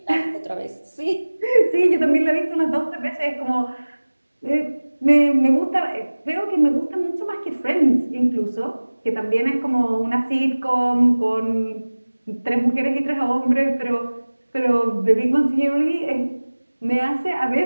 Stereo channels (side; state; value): both; inverted; correlation -1.00